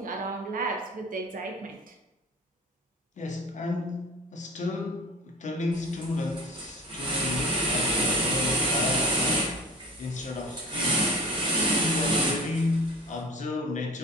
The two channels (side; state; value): both; normal; correlation 0.37